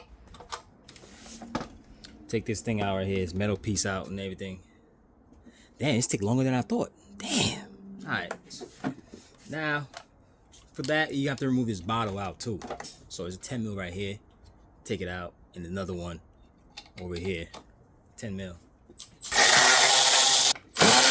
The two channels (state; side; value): identical; both; correlation 1.00